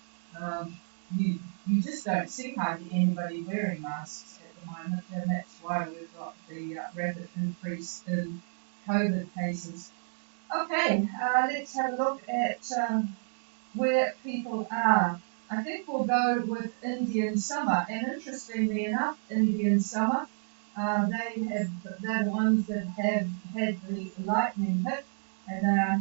Um, you just don't see hardly anybody wearing masks at the moment, and that's why we've got the rapid increase in COVID cases. Okay, let's have a look at where people are. I think we'll go with Indian summer, and interestingly enough, Indian summer, they're the ones that have had the lightning hit, and they are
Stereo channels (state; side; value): silent; left; digital silence